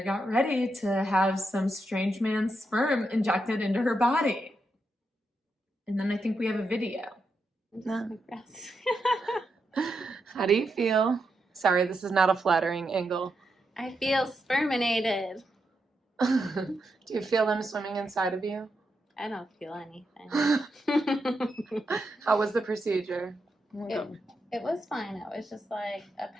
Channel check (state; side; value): normal; both; correlation 0.84